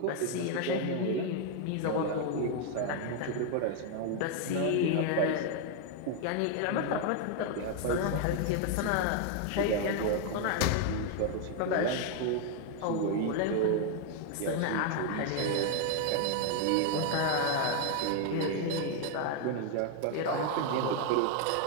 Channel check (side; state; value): both; different; correlation 0.01